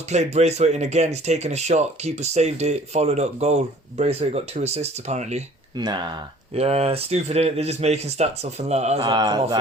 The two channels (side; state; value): both; normal; correlation 0.52